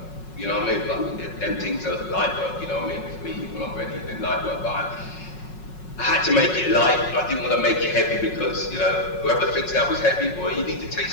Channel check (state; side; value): late; right; 5.4 ms